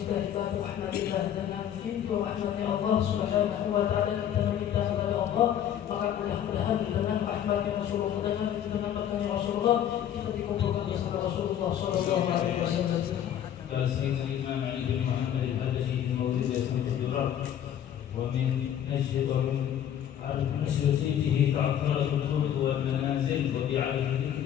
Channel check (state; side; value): quieter; right; 10.2 dB